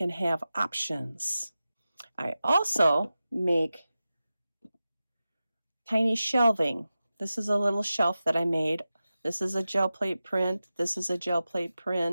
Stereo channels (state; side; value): inverted; both; correlation -0.94